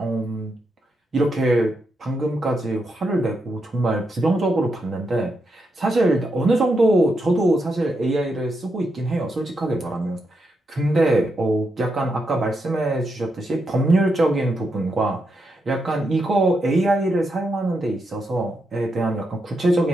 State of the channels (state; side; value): normal; both; correlation 0.83